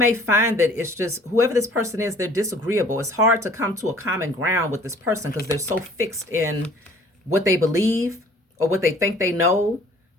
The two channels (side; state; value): both; normal; correlation 0.53